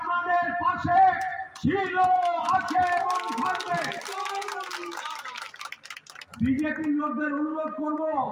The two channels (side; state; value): both; identical; correlation 1.00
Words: পাশে ছিল, আছে এবং থাকবে। বিজেপির লোকদের অনুরোধ করব,